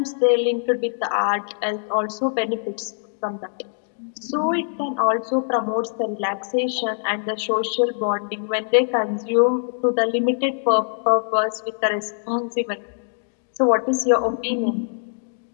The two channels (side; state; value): right; silent; digital silence